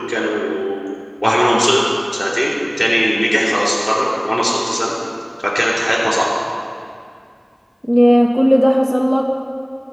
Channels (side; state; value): both; identical; correlation 1.00